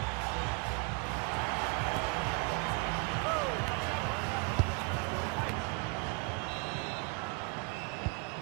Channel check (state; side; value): quieter; left; 34.4 dB